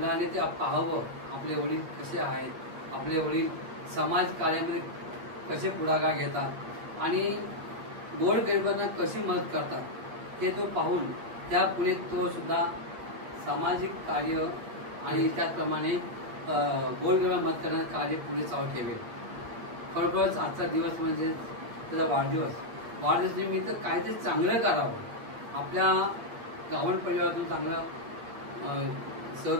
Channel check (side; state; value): left; late; 8.5 ms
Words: ते पाहावं आपले वडील कसे आहेत, आपले वडील समाज कार्यामध्ये कसे पुढाकार घेतात आणि गोरगरिबांना कशी मदत करतात हे तो पाहून त्या पुढे तो सुद्धा सामाजिक कार्य आणि त्याचप्रमाणे गोरगरिबांना मदत करण्याचं कार्य पुढे चालू ठेवेल. खरोखरच आजचा दिवस म्हणजे त्याचा वाढदिवस निमित्त काहीतरी चांगलं करावं, आपल्या गावण परिवारातून चांगलं